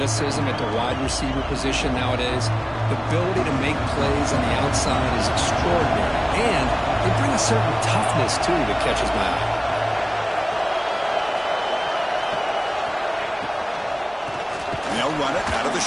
at the wide receiver position nowadays. The ability to make plays on the outside is extraordinary, and they bring a certain toughness, too, that catches my eye. They'll run it out of the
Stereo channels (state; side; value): identical; both; correlation 1.00